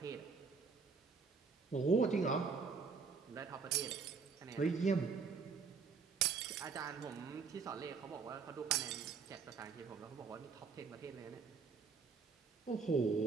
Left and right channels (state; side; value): quieter; left; 5.3 dB